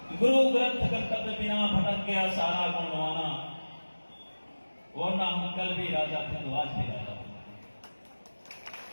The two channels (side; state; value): both; inverted; correlation -1.00